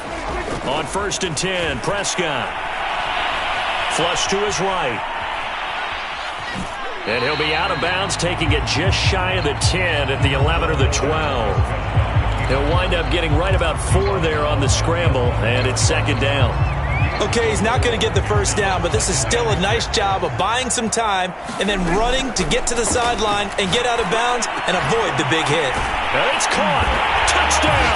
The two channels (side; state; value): both; identical; correlation 1.00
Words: On 1st and 10, Prescott. Flush to his right. And he'll be out of bounds, taking it just shy of the 10 at the 11 or the 12. He'll wind up getting right about 4 there on the scramble, and it's 2nd down. Okay, he's not going to get the first down, but this is still a nice job of buying some time and then running to get to the sideline and get out of bounds and avoid the big hit. And it's caught.